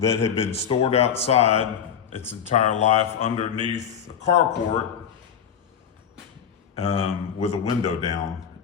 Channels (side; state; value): right; quieter; 8.0 dB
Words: had been stored outside its entire life underneath a carport with a window down.